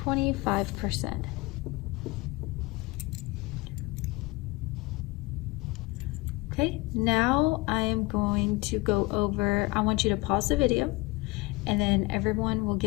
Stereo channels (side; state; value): right; quieter; 23.6 dB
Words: Okay, now I am going to go over, I want you to pause the video and then everyone will